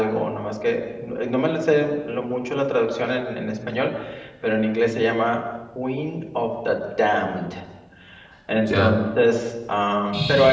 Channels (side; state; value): both; identical; correlation 1.00